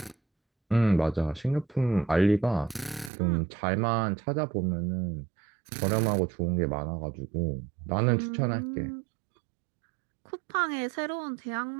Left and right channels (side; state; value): left; drops out; at 3.1 s